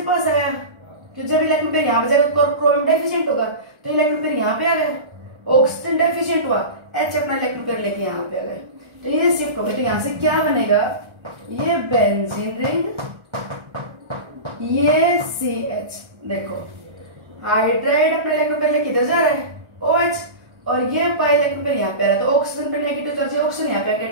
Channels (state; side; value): late; left; 1.3 ms